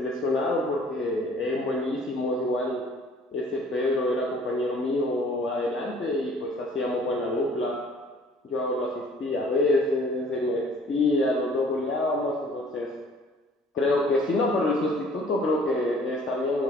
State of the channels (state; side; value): normal; both; correlation 0.54